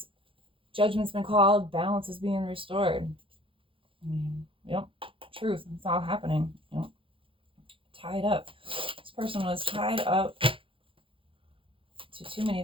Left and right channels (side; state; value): left; late; 0.25 ms